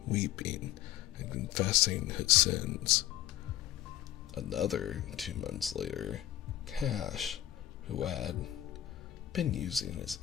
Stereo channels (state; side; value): quieter; right; 13.0 dB